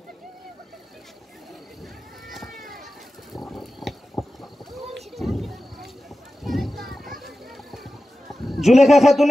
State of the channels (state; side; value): normal; both; correlation 0.94